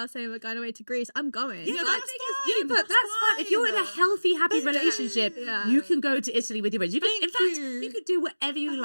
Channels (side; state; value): both; inverted; correlation -1.00